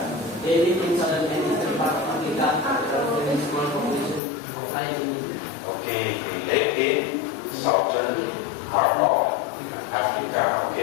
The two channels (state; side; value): drops out; right; at 4.2 s